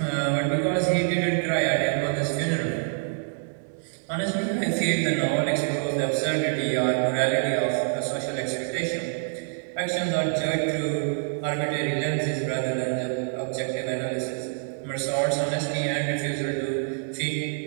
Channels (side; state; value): left; silent; 61 dB below the other